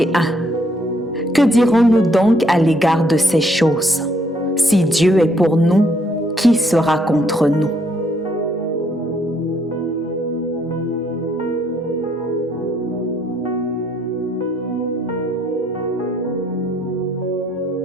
Que dirons-nous donc à l'égard de ces choses ? Si Dieu est pour nous, qui sera contre nous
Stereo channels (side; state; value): both; normal; correlation 0.69